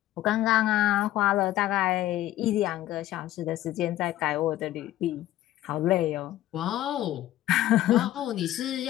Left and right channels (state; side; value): quieter; right; 14.3 dB